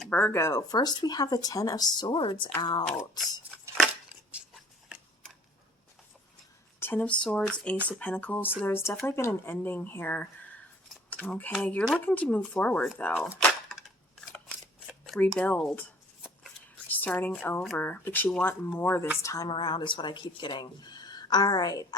Virgo. First we have the Ten of Swords out. Ten of Swords, Ace of Pentacles. So there's definitely been an ending here. Okay, you're looking to move forward though. Rebuild. Starting over, but you want more this time around is what I keep getting. All right,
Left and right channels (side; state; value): both; normal; correlation 0.52